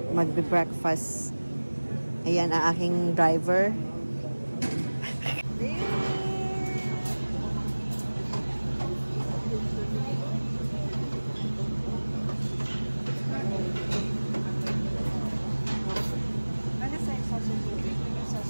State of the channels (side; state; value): both; inverted; correlation -1.00